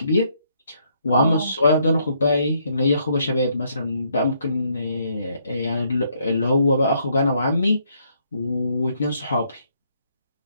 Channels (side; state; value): both; inverted; correlation -0.71